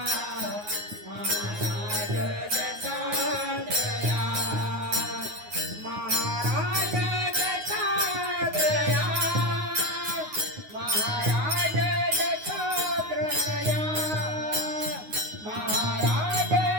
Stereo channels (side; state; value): left; late; 9.5 ms